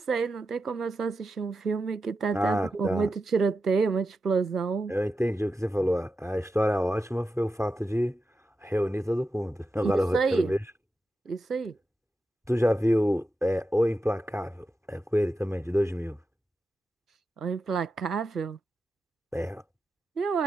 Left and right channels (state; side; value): normal; both; correlation 0.90